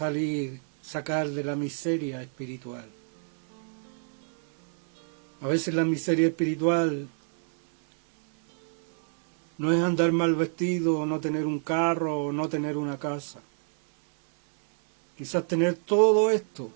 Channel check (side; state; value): left; silent; 60 dB below the other